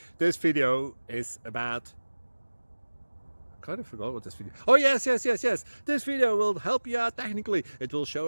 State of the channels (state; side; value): inverted; both; correlation -1.00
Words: video is about, I kind of forgot what this video. Oh, yes. This video will help you out technically. It will